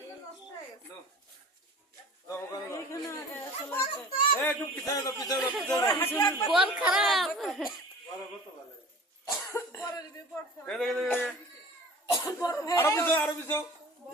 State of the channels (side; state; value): both; normal; correlation 0.41